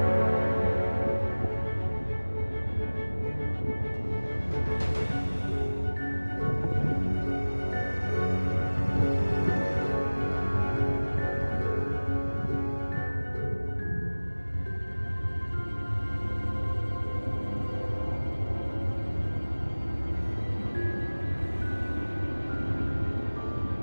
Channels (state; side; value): inverted; both; correlation -1.00